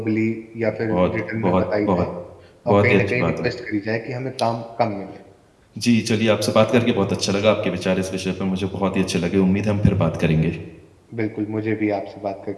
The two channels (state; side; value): identical; both; correlation 1.00